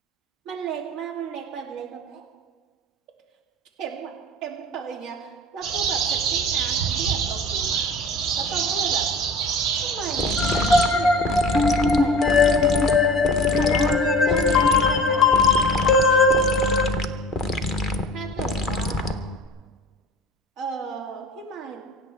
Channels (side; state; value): both; normal; correlation 0.40